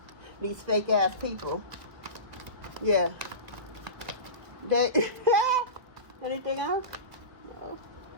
These fake ass people. Yeah. They anything else? No.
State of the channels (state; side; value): late; left; 1.6 ms